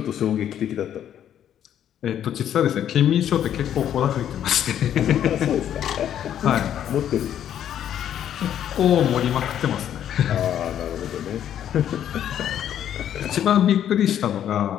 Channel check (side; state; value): right; quieter; 10.3 dB